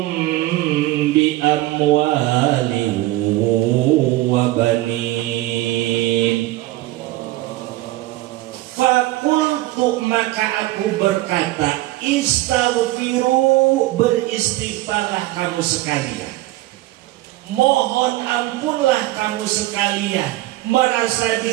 bi amwalin wa banin. Fakultu, maka aku berkata, istaghfiru, beristighfarlah kamu sekalian, mohon ampunlah kamu sekalian, merasa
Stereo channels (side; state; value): left; quieter; 17.5 dB